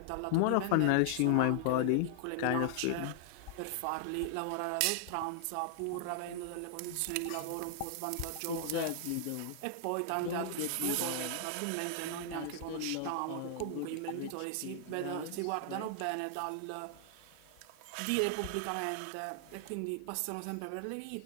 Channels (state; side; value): different; both; correlation 0.00